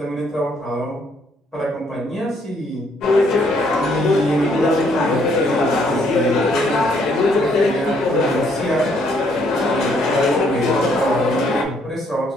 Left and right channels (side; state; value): both; normal; correlation 0.68